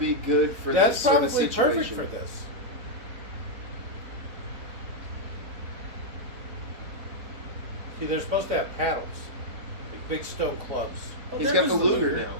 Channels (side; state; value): left; late; 4.3 ms